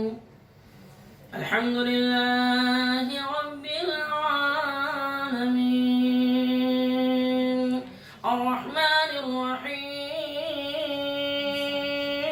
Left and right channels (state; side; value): identical; both; correlation 1.00